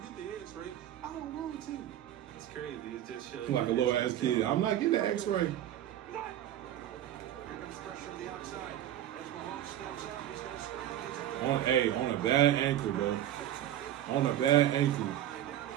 the X-ray? I don't want to. It's crazy. It just shows like a little ass kid. I'm like, get the X-ray. Here comes pressure from the outside. As Mahomes steps out, he's gonna scramble. On a bad ankle, bro. On a bad ankle.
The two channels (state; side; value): quieter; left; 12.1 dB